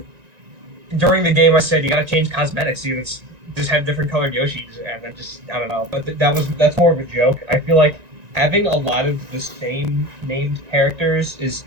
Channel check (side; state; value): left; late; 1.9 ms